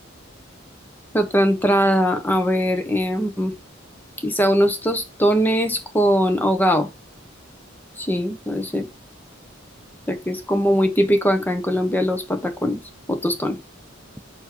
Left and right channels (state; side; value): normal; both; correlation 0.83